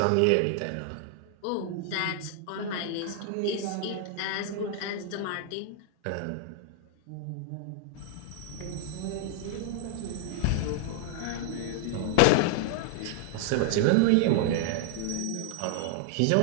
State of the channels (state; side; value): different; both; correlation -0.01